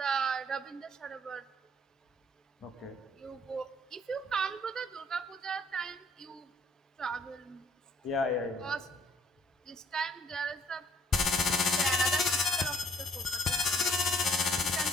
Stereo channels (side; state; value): both; normal; correlation 0.62